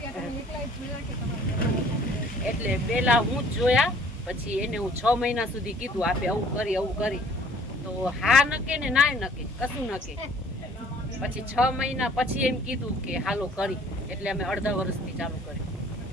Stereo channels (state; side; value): normal; both; correlation 0.56